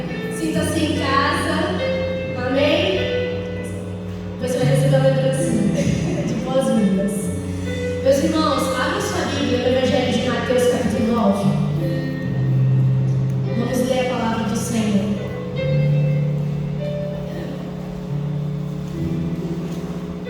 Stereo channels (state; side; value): identical; both; correlation 1.00